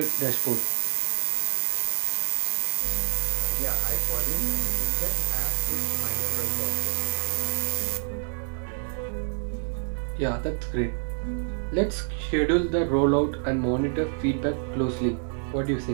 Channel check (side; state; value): left; silent; digital silence